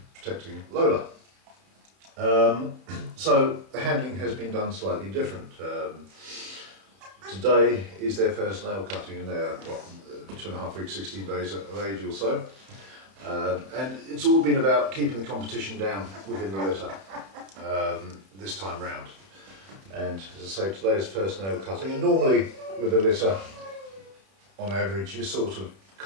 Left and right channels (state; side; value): late; left; 31 ms